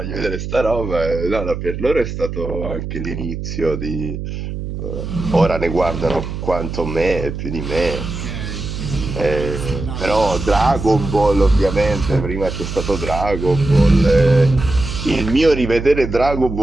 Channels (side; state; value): right; noise; hum, 6 dB below the sound